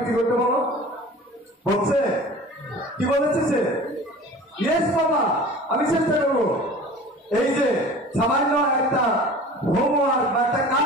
করতে বলো? বলছে কি বলেছে সে? ইয়েস বাবা, আমি চেষ্টা করবো। এই যে সামান্য একটা হোমওয়ার্ক বা একটা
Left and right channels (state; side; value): normal; both; correlation 0.41